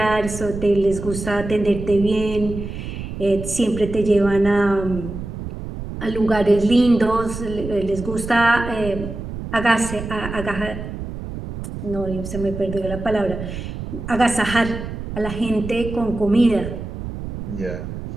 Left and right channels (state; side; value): noise; right; rumble, 8 dB below the sound